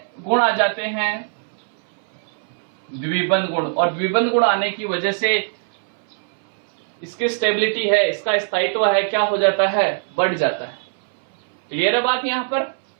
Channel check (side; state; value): left; silent; 63 dB below the other